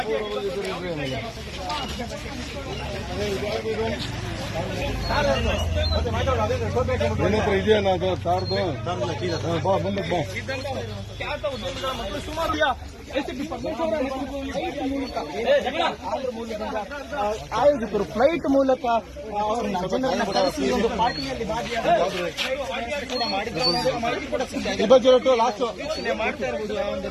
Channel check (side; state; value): both; identical; correlation 1.00